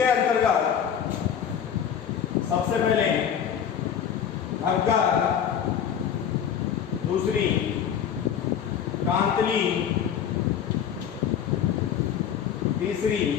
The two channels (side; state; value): right; quieter; 8.6 dB